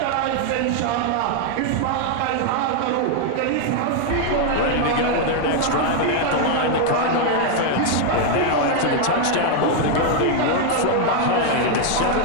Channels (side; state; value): both; different; correlation 0.00